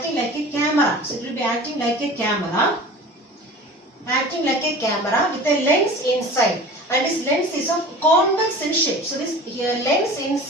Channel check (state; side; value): normal; both; correlation 0.39